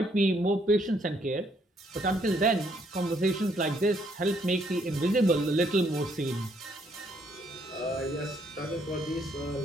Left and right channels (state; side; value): normal; both; correlation 0.70